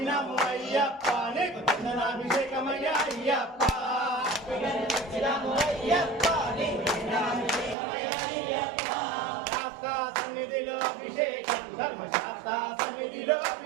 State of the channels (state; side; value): drops out; left; at 7.8 s